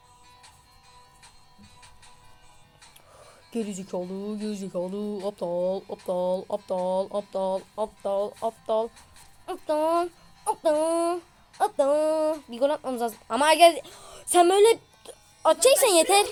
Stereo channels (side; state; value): both; identical; correlation 1.00